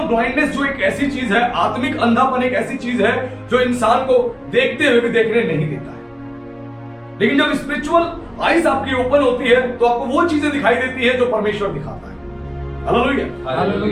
ब्लाइंडनेस जो एक ऐसी चीज है, आत्मिक अंधापन एक ऐसी चीज है जो इंसान को देखते हुए भी देखने नहीं देता है। लेकिन जब स्पिरिचुअल आईज आपकी ओपन होती है तो आपको वो चीजें दिखाई देती है जो परमेश्वर दिखाता है। Hallelujah,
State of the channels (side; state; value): both; identical; correlation 1.00